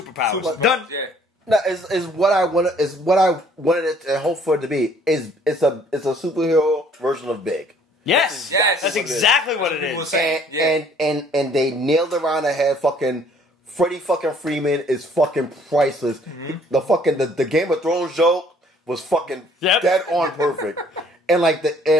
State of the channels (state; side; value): normal; both; correlation 0.59